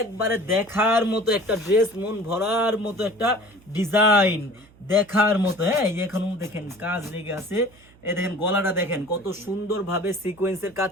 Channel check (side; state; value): right; noise; hum, 27 dB below the sound